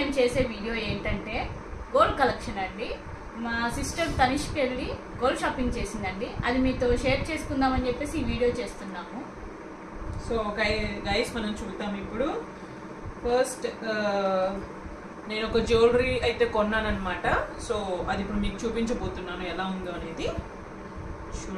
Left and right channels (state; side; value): identical; both; correlation 1.00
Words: చేసే వీడియో ఏంటంటే గోల్డ్ కలెక్షన్ అండి. మా సిస్టర్ తనిష్కి వెళ్ళి గోల్డ్ షాపింగ్ చేసిందండి. అది మీతో షేర్ చేసుకుందామని చెప్పేసి ఈ వీడియో చేస్తున్నాము. సో గైస్ మనం చూద్దాం ఇప్పుడు. ఫస్ట్ నేను ఒక జ్యువెలరీ అయితే కొన్నానమాట. సో అది ఇప్పుడు మీకు చూపించబోతున్నాను ఎలా ఉందో అనేది.